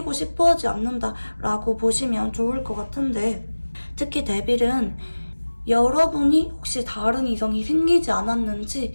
싶어 하지 않는다라고 보시면 좋을 것 같은데, 특히 데빌은 여러분이 혹시 다른 이성이 생기지 않았는지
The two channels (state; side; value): inverted; both; correlation -1.00